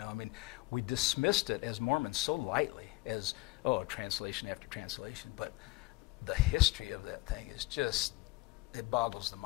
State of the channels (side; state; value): right; quieter; 22.1 dB